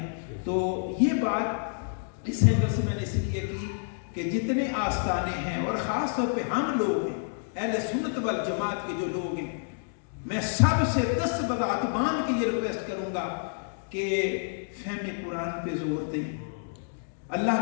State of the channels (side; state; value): right; silent; digital silence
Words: تو یہ بات اس اینگل سے میں نے اس لیے کی کہ جتنے آستانے ہیں، اور خاص طور پہ ہم لوگ ہیں اہل سنت والجماعت کے جو لوگ ہیں، میں سب سے دست بدعت مان کے یہ ریکویسٹ کروں گا کہ فہم قرآن پہ زور دیں،